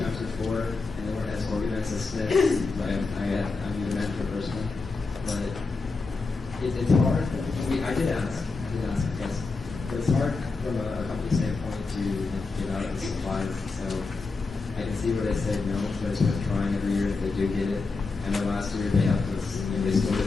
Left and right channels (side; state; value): right; quieter; 4.0 dB